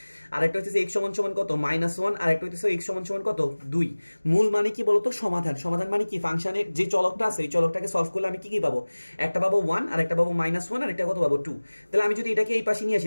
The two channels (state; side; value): inverted; both; correlation -1.00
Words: আর একটা হইতেছে x সমান কত -1, আর একটা হইতেছে x সমান কত 2। মূল মানে কি বলতো, সমাধান। সমাধান মানে কি, ফাংশনের যে চলকটা আছে এই চলকটাকে সলভ করলে আমি কি কি পাবো, একটা পাবো 1, আর একটা পাবো -1, আর একটা কত পাবো 2। তাহলে আমি যদি এটাকে এই পাশে নিয়ে